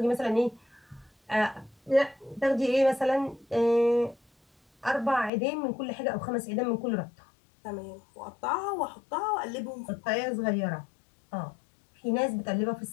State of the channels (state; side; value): drops out; right; at 5.3 s